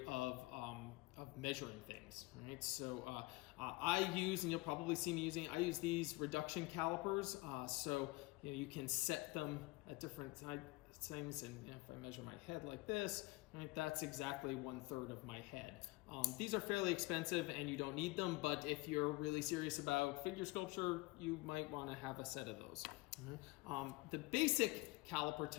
of measuring things. Right. So I use, and you'll probably see me using, I use these reduction calipers. So you can set them at different things, and if I measure my head like this, right, that's exactly 1/3 of my head. These are fairly expensive and you don't need them, but if you're really serious about figure sculpture, you might want to have a set of those. The basic caliper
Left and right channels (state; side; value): quieter; right; 22.4 dB